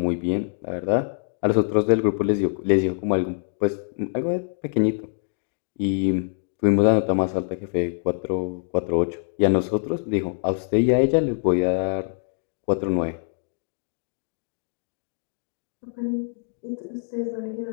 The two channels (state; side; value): silent; right; digital silence